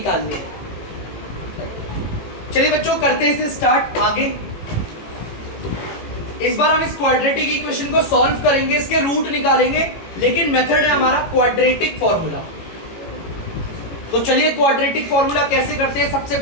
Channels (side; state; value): right; late; 18 ms